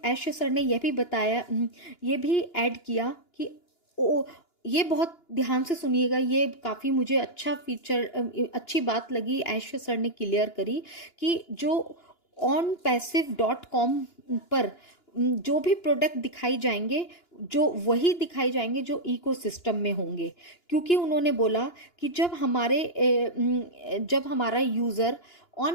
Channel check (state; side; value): late; right; 2.9 ms